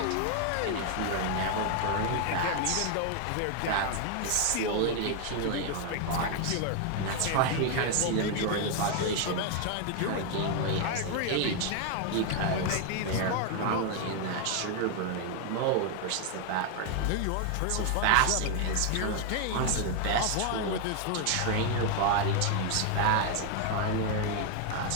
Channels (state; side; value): different; both; correlation 0.00